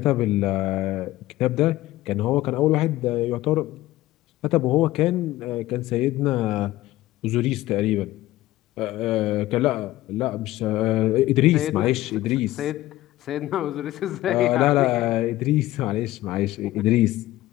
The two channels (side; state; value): right; quieter; 16.2 dB